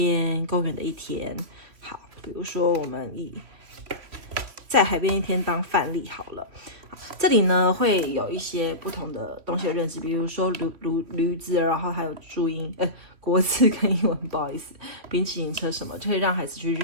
公园的一天。好，比如说我们以在海边一天当范例好了。这里呢会有一些不同的东西的认知，比如说驴子，然后还有注音，国字跟英文，不好意思，冰淇淋车什么，就可以让孩子去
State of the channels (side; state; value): left; late; 3.0 ms